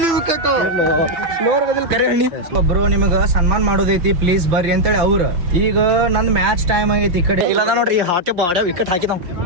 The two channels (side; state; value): left; late; 6.0 ms